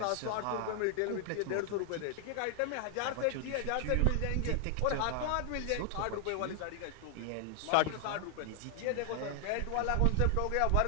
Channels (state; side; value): different; both; correlation 0.00